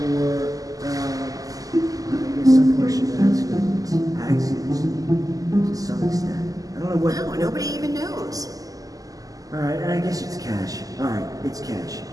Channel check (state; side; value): late; left; 0.17 ms